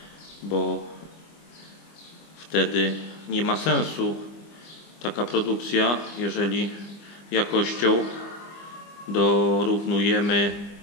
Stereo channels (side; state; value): right; late; 25 ms